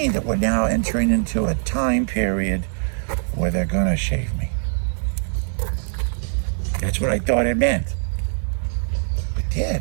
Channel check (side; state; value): left; silent; digital silence